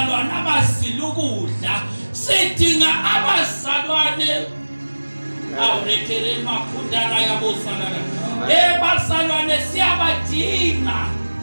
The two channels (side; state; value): both; inverted; correlation -1.00